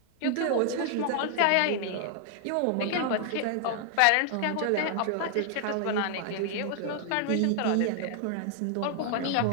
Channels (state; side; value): different; both; correlation 0.00